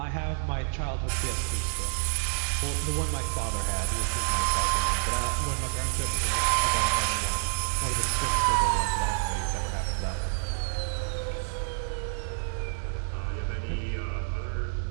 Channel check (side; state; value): left; silent; digital silence